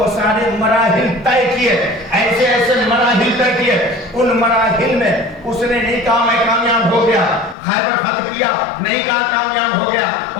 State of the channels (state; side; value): drops out; right; at 7.6 s